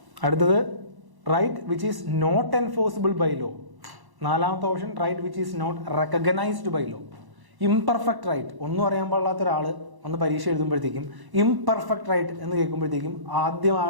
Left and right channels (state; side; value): late; left; 1.1 ms